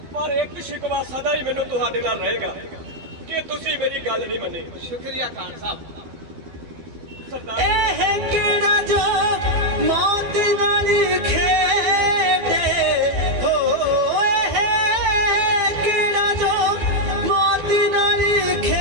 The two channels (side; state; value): left; late; 12 ms